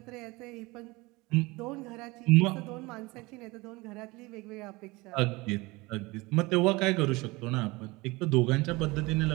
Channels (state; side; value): quieter; left; 23.1 dB